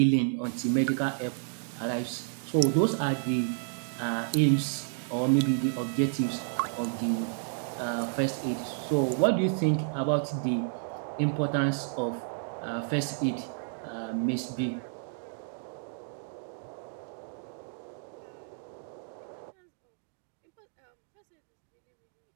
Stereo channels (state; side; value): silent; left; digital silence